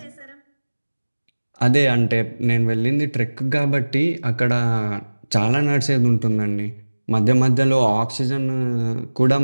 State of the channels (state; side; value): inverted; both; correlation -1.00